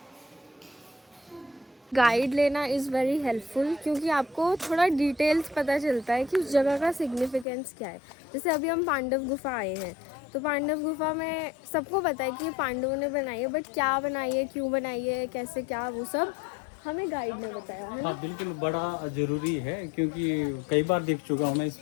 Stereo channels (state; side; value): drops out; right; at 7.5 s